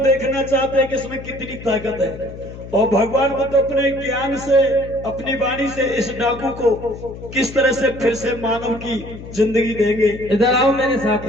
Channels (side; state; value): left; noise; hum, 13 dB below the sound